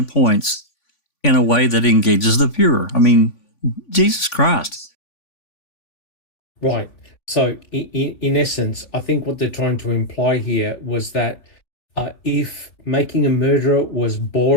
points in a way that engages the viewer. I mean, Jesus Christ. Right. So, in essence, I think what they're trying to imply here was that if Making a Murderer was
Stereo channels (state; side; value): late; right; 3.5 ms